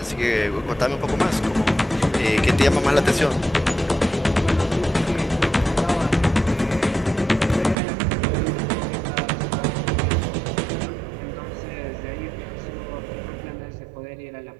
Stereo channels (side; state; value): left; drops out; at 7.8 s